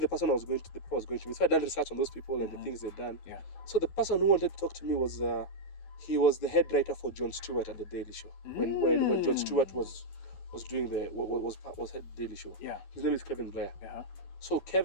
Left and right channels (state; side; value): late; right; 11 ms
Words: the person was going to me. So I done research on those people and the things they'd done. Yeah. So the person who wanted to talk to me was he was the head writer for Jon Stewart at the Daily Show. When Jon Stewart was doing was head Daily Show. Yeah. His name is Kevin Blair. So